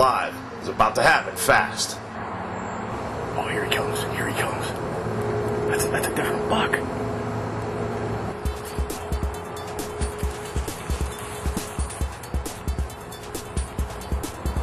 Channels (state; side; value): identical; both; correlation 1.00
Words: It was about to happen fast. Oh, here he comes. Here he comes. That's a different buck.